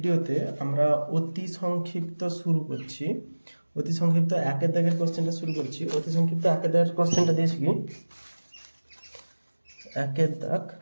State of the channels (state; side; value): inverted; both; correlation -1.00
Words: আমরা অতি সংক্ষিপ্ত শুরু করছি। অতি সংক্ষিপ্ত 1-এর দাগের কোশ্চেনটা শুরু করছি। অতি সংক্ষিপ্ত 1-এর দাগের কোশ্চেনটা দিয়েছি কি 1-এর দাগ,